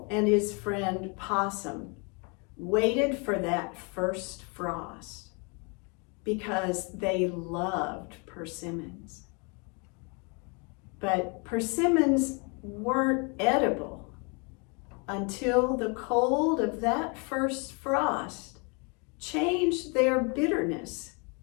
and his friend Possum waited for that first frost because they loved persimmons. But persimmons weren't edible until the cold of that first frost changed their bitterness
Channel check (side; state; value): right; quieter; 33.5 dB